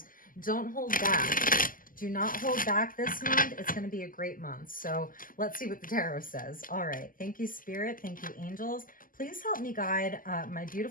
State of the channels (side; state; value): right; late; 0.41 ms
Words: Don't hold back. Do not hold back this month. It's going to be a great month. So let's see what the tarot says. All right. Thank you, Spirit. Thank you, angels. Please help me guide my